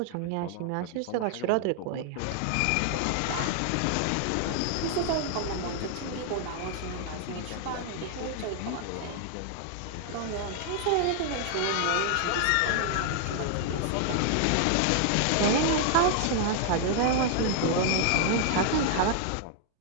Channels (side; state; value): both; different; correlation 0.00